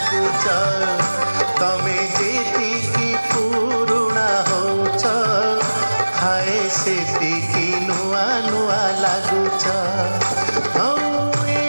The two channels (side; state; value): both; inverted; correlation -1.00